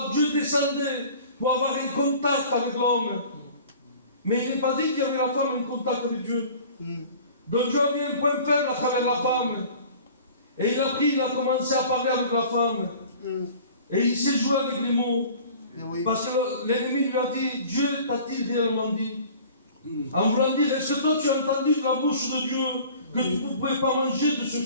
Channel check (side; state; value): both; inverted; correlation -0.45